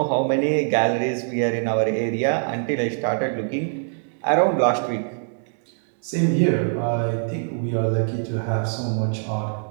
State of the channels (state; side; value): silent; left; digital silence